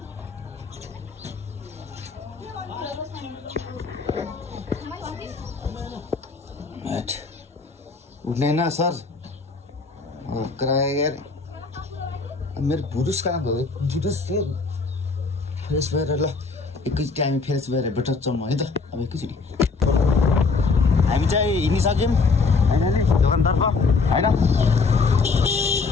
उठ्ने ना सर कराया यार। मेरो पुरुष कहाँ गयो? पुरुष फ्रेस भएर ल एकैचोटि हामी फ्रेस भएर भेट्छौँ है त। अब एकैचोटि हामी चाहिँ हिँडिसक्यौँ फाइनली दोकानतर्फ होइन।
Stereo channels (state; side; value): quieter; right; 4.4 dB